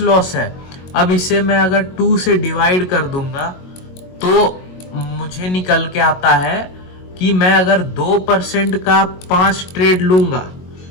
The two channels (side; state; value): right; late; 22 ms